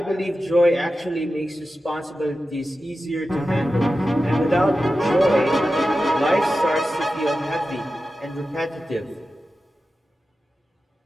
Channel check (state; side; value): normal; both; correlation 0.93